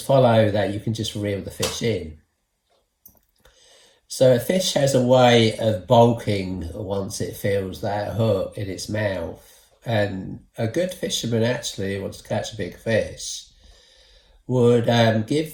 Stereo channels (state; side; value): identical; both; correlation 1.00